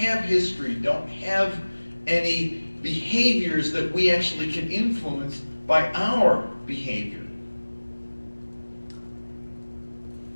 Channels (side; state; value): both; inverted; correlation -1.00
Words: history, don't have any behaviors that we actually can influence by our behavior.